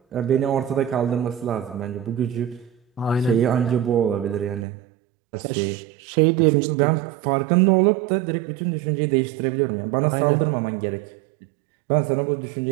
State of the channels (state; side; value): drops out; left; at 4.7 s